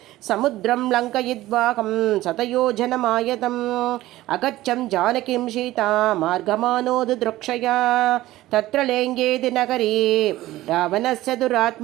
समुद्रं लङ्कयित्वाहं शतयोजनमायतम् अगच्छं जानकीं सीता मार्गमानोदृक्षया तत्र लेङ्गेति नगरे रावणस्य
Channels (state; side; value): quieter; left; 16.2 dB